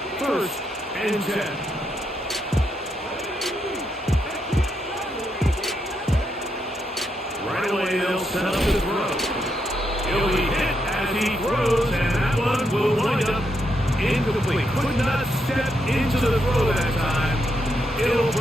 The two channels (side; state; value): both; normal; correlation 0.80